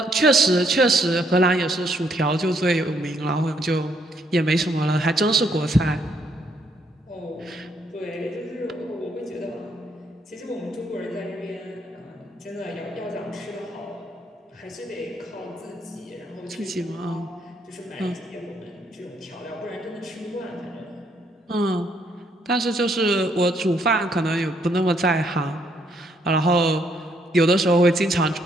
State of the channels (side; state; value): both; normal; correlation 0.71